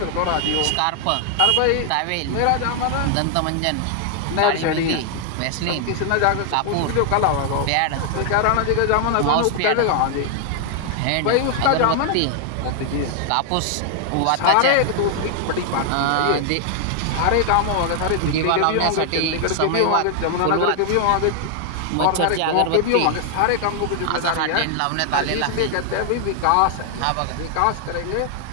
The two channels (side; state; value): both; different; correlation 0.00